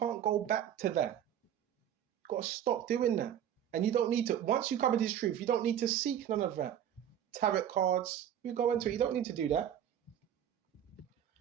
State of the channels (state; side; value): quieter; left; 10.1 dB